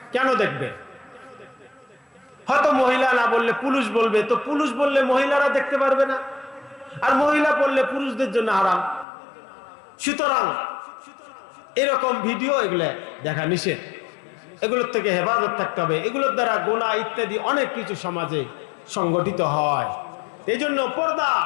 কেন দেখবে? হয়তো মহিলা না বললে পুরুষ বলবে, তো পুরুষ বললে মহিলারা দেখতে পারবে না, আর মহিলা বললে পুরুষদের জন্য হারাম। সুতরাং এরকম ভিডিও এগুলো দেখা নিষেধ, এগুলোর থেকে হেফাজত থাকতে হবে। এগুলোর দ্বারা গুনাহ ইত্যাদি অনেক কিছু সমাজে সংগঠিত হয়। এই জন্য পর্দা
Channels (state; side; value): drops out; right; at 9.1 s